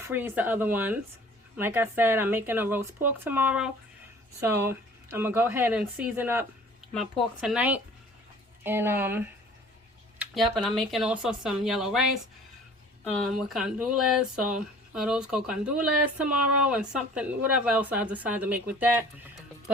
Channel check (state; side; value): normal; both; correlation 0.49